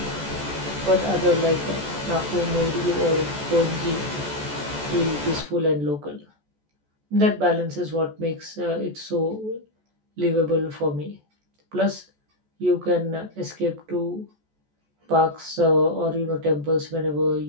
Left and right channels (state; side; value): late; left; 14 ms